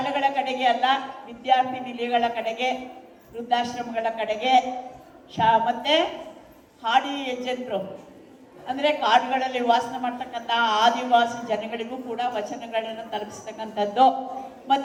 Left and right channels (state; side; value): identical; both; correlation 1.00